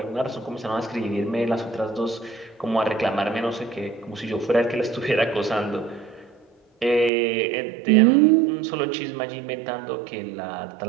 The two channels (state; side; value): drops out; left; at 7.1 s